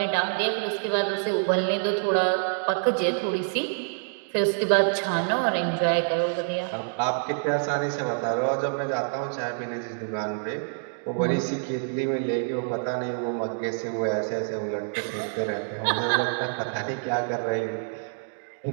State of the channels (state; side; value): silent; left; digital silence